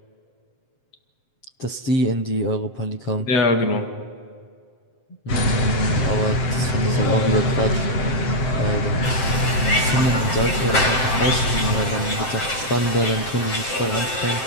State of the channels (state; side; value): late; right; 7.6 ms